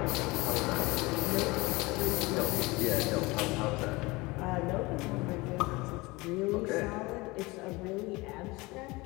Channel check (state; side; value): quieter; right; 23.1 dB